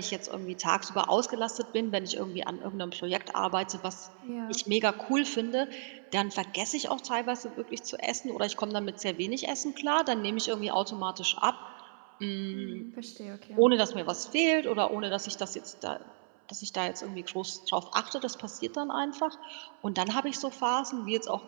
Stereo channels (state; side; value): silent; left; 56 dB below the other